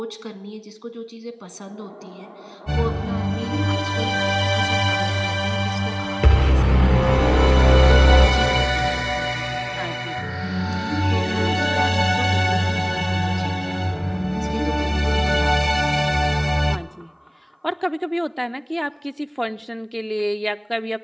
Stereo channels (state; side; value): identical; both; correlation 1.00